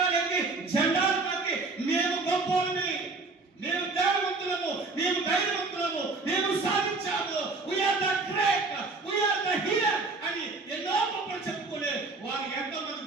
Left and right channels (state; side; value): quieter; left; 3.6 dB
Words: జెండాలు పాతి మేము గొప్పవాళ్ళని, మేము ధైర్యవంతులము, మేము ధైర్యవంతులము, మేము సాధించాము, we are the great, we are the hero అని ఎన్నో గొప్పలు చెప్పుకునే వారు ఎంతమంది